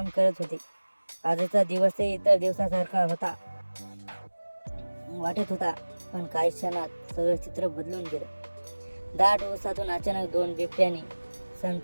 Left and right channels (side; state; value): both; inverted; correlation -1.00